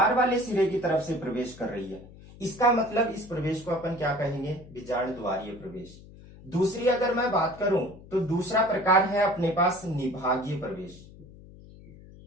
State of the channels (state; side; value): noise; left; hum, 20 dB below the sound